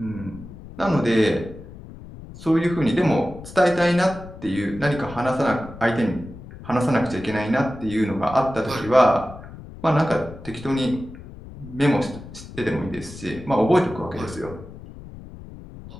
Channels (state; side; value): noise; left; rumble, 15 dB below the sound